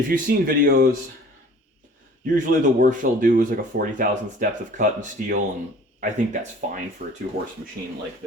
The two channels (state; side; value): normal; both; correlation 0.49